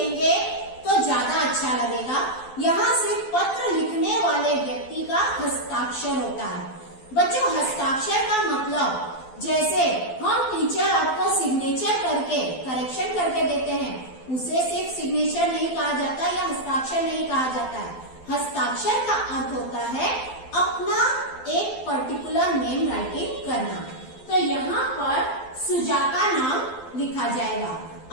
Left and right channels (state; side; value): late; right; 12 ms